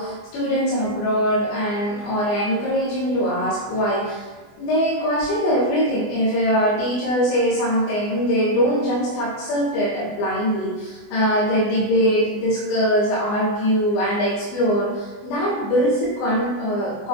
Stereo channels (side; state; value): right; late; 24 ms